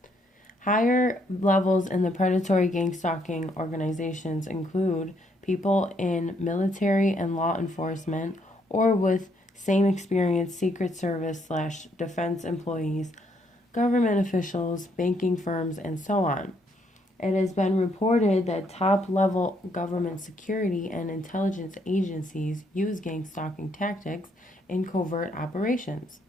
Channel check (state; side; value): normal; both; correlation 0.71